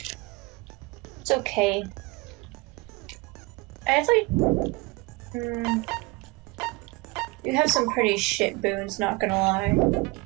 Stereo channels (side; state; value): left; quieter; 24.3 dB